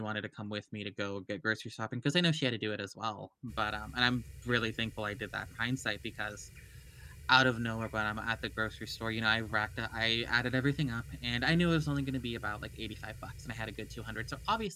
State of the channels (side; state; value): both; identical; correlation 1.00